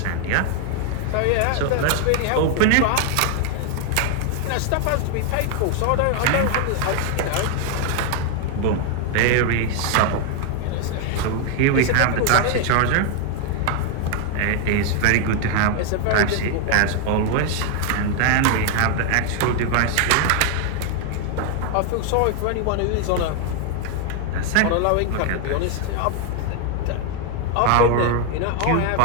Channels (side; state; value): both; different; correlation 0.00